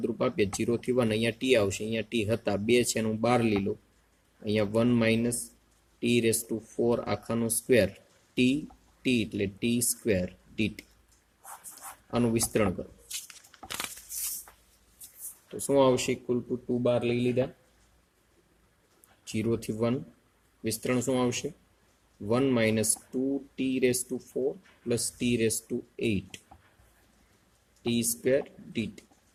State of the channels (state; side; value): identical; both; correlation 1.00